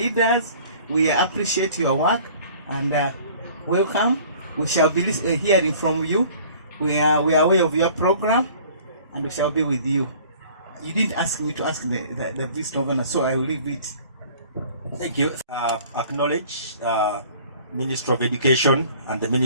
We appreciate your work, and welcome. We shall be hearing from you. We are aware of your program, and we shall be with you. You didn't ask me to ask the Vice Governor, so I will leave it. Thank you. Acknowledge Minister of Education and the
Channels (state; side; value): inverted; both; correlation -0.50